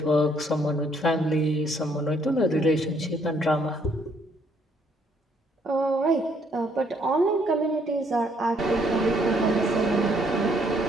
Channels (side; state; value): both; normal; correlation 0.68